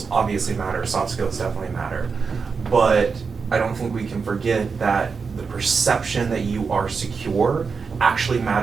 obviously matter, soft skills definitely matter, but I don't think we can forget that the perception that you are secure actually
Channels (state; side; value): quieter; left; 5.2 dB